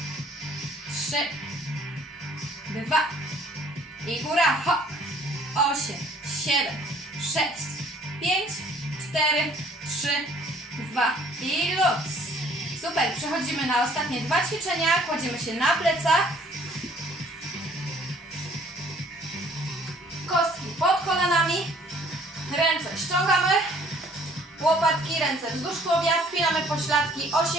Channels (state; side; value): normal; both; correlation 0.58